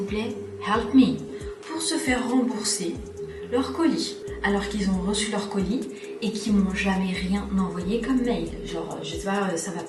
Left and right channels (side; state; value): both; identical; correlation 1.00